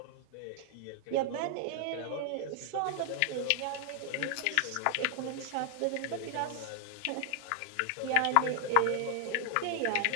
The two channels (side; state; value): both; different; correlation 0.00